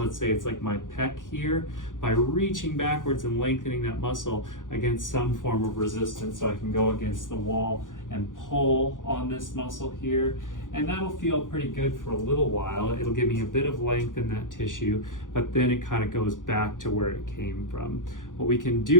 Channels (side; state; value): right; late; 0.88 ms